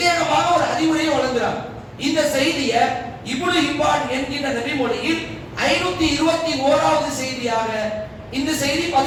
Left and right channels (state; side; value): identical; both; correlation 1.00